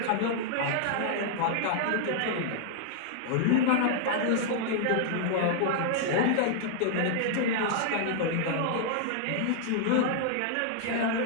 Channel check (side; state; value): both; different; correlation -0.01